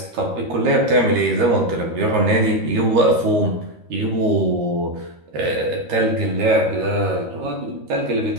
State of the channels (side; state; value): left; late; 13 ms